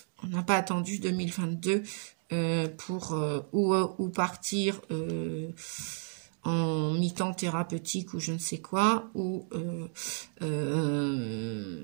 on n'a pas attendu 2022 pour ou partir en mi-temps thérapeutique ou je ne sais quoi, ou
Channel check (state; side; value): silent; left; 56 dB below the other